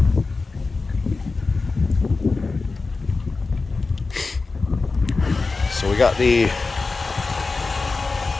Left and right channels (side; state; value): right; quieter; 4.0 dB